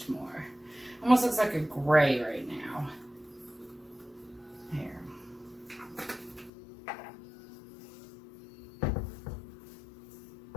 more. Almost looks like a gray right now. Here.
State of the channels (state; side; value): drops out; right; at 6.5 s